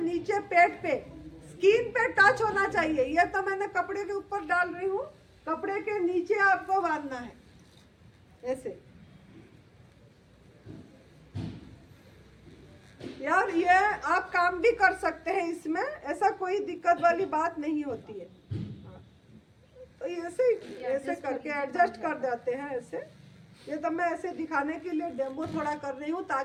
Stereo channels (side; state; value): both; identical; correlation 1.00